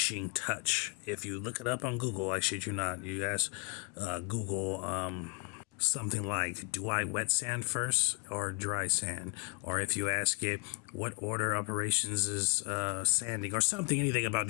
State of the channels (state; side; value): quieter; right; 33.6 dB